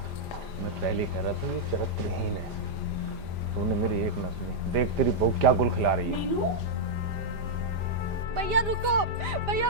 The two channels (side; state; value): left; late; 5.0 ms